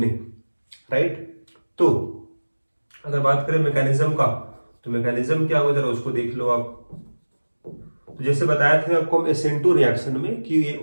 राइट। तो अगर बात करें मैकेनिज्म का, तो मैकेनिज्म क्या होगा जरा उसको देख लो आप। तो जैसे बताया था आपको हम SN2 रिएक्शन में कि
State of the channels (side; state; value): both; inverted; correlation -1.00